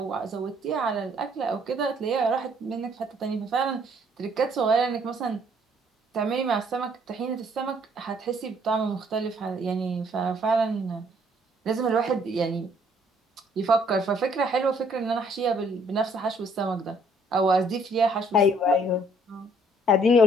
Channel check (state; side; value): normal; both; correlation 0.63